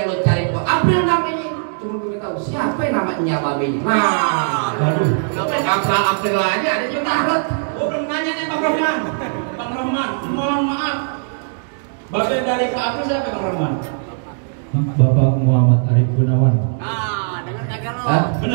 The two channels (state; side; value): silent; left; digital silence